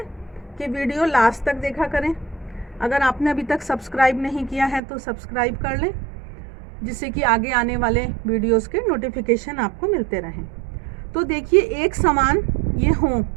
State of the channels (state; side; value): drops out; left; at 4.8 s